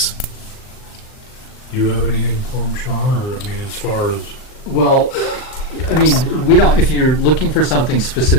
Do you have anything for him, Sean? Or, I mean, as far as... Well, I mean, we don't, if you're looking for something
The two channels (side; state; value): right; late; 39 ms